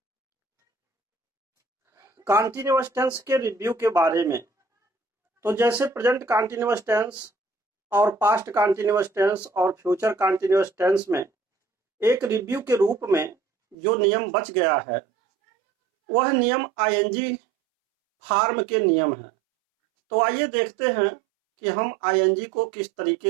कॉन्टिन्यूअस टेंस के रिव्यू के बारे में। तो जैसे प्रेजेंट कॉन्टिन्यूअस टेंस और पास्ट कॉन्टिन्यूअस टेंस और फ्यूचर कॉन्टिन्यूअस टेंस में एक रिव्यू के रूप में जो नियम बच गया है वह नियम आईएनजी फॉर्म के नियम हैं। तो आइए देखते हैं कि हम आईएनजी को किस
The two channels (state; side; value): drops out; left; at 13.8 s